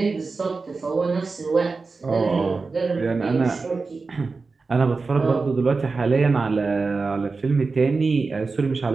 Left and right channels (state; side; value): quieter; left; 4.2 dB